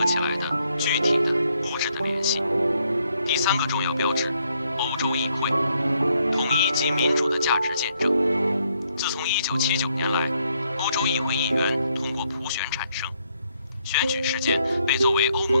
起来的具体的、物质的联系。第3个重要标志，欧洲议会，统一及民主的价值见证。自从1979年来，欧洲议会议员通过普选产生，选举事件被作为欧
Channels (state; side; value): inverted; both; correlation -0.73